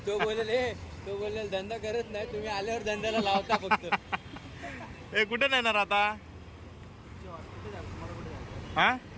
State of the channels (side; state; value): both; identical; correlation 1.00